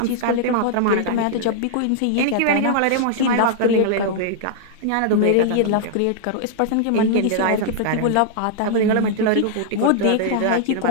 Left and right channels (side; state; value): both; different; correlation -0.01